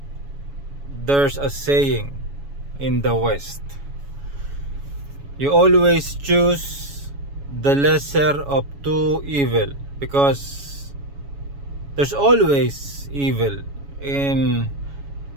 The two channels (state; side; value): late; left; 7.1 ms